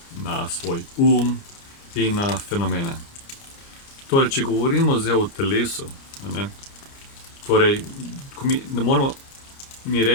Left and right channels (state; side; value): late; right; 29 ms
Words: na svoj in na fenomene. Torej, če govorimo zdaj o telesu, torej, ne moramo mi